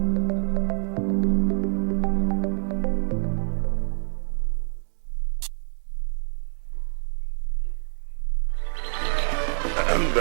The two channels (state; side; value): silent; left; 60 dB below the other